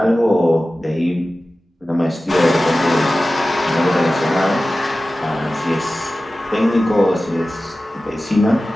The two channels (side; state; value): both; normal; correlation 0.96